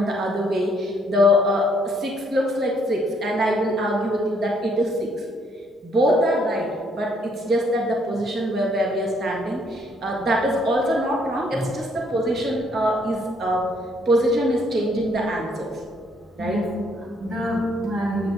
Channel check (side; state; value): both; normal; correlation 0.68